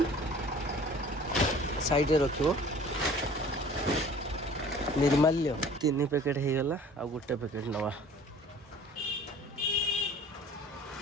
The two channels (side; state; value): both; normal; correlation 0.48